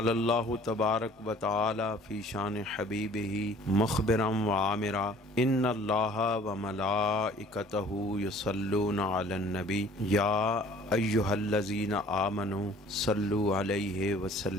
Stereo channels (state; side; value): normal; both; correlation 0.52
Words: اللہ تبارک وتعالی فی شان حبیبہ مخبرا وعامرا ان اللہ وملائکتہ یصلون علی النبی یا ایہا الذین آمنوا صلوا علیہ